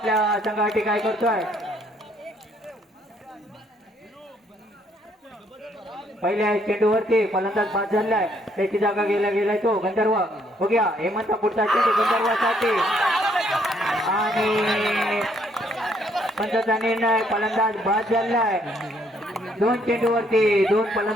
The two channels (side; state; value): both; normal; correlation 0.68